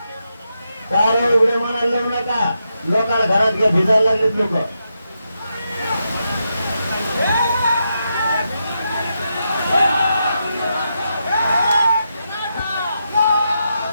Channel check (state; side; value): inverted; both; correlation -0.84